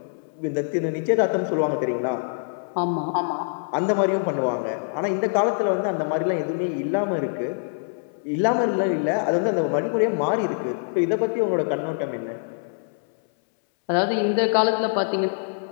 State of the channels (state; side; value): silent; right; 62 dB below the other